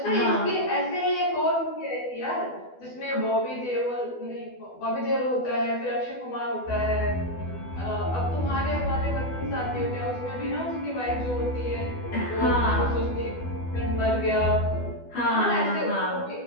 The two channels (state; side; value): late; right; 12 ms